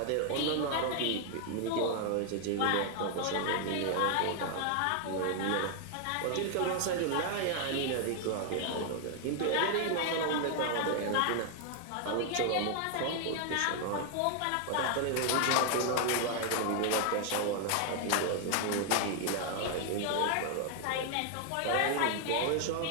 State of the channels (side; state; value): both; different; correlation 0.00